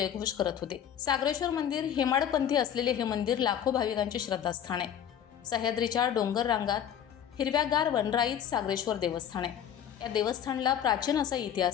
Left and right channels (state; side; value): quieter; right; 9.4 dB